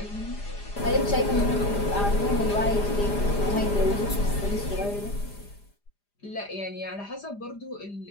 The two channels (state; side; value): late; right; 4.9 ms